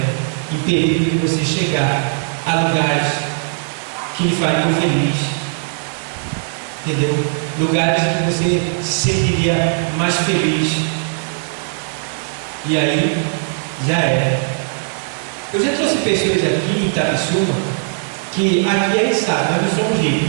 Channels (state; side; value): silent; left; digital silence